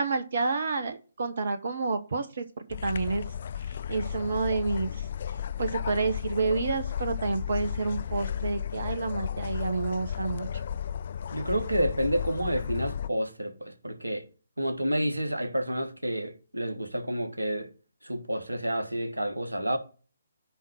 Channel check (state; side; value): inverted; both; correlation -0.82